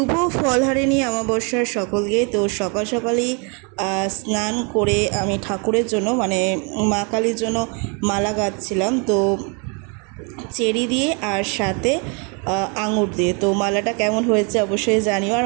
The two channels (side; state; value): left; quieter; 35.0 dB